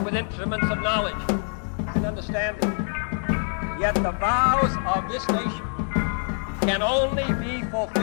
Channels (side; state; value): right; silent; 56 dB below the other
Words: with instruments of knowledge and understanding. Yet the vows of this nation can only be